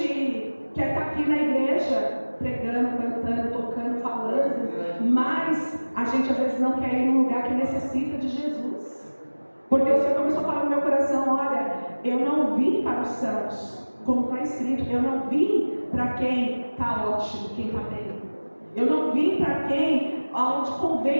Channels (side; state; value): both; inverted; correlation -1.00